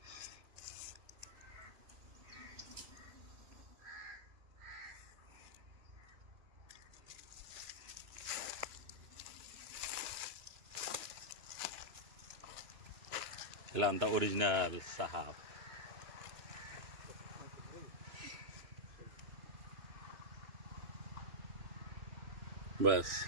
त्याला म्हणता ओरिजिनल साहाब बस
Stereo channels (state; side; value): late; left; 2.9 ms